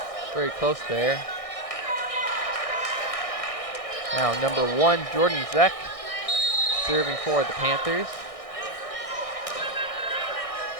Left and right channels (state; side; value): late; right; 1.6 ms